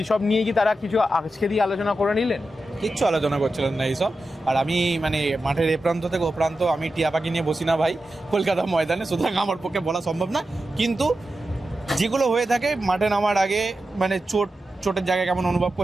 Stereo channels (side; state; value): both; normal; correlation 0.91